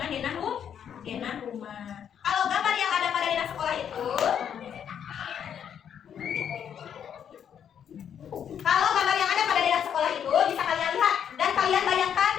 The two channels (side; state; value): right; quieter; 8.6 dB